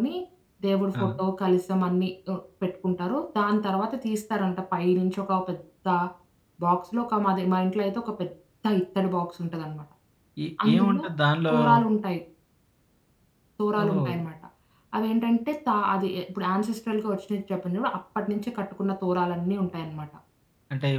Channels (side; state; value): both; identical; correlation 1.00